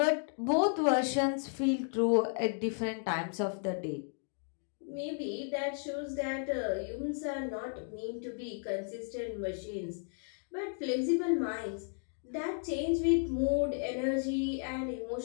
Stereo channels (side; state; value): right; silent; 55 dB below the other